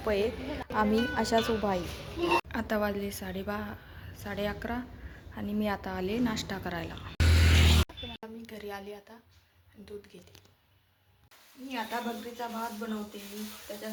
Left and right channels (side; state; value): both; identical; correlation 1.00